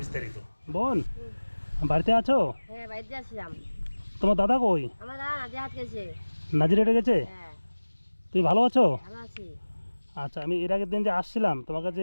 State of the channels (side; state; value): both; inverted; correlation -1.00